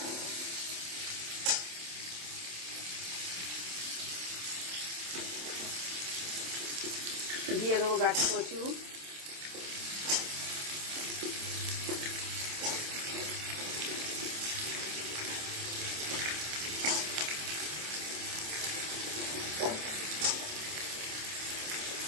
দিয়ে দেবো গাটি কচু,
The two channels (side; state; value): left; late; 27 ms